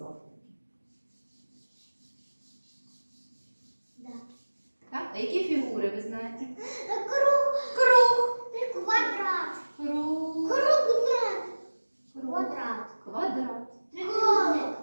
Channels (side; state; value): both; inverted; correlation -1.00